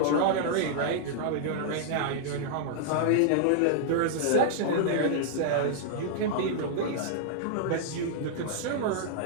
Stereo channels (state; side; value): different; both; correlation -0.01